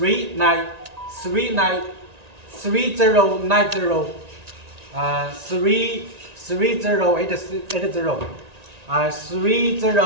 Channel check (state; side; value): late; left; 1.9 ms